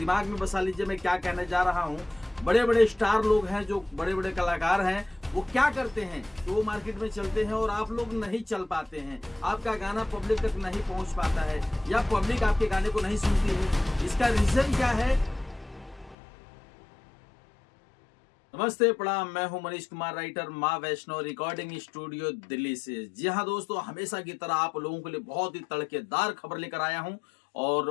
में बसा लीजिए मैं क्या कहने जा रहा हूँ। बड़े बड़े स्टार लोग हैं, जो बड़े बड़े कलाकार हैं, वो क्या करते हैं कि वो मार्केट में चलते हैं और आप लोग नहीं चल पाते हैं। आपका गाना पब्लिक तक नहीं पहुंच पाता है या पब्लिक आपके गाने को नहीं सुनती है। इसका रीजन क्या है? नमस्ते, प्रणाम। मैं हूं मनीष कुमार, राइटर, माँ वैष्णो रिकॉर्डिंग स्टूडियो दिल्ली से। जी हाँ दोस्तों, हमेशा की तरह आप लोगों के लिए बहुत ही तड़केदार खबर लेकर आया हूं और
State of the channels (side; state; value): right; drops out; at 16.2 s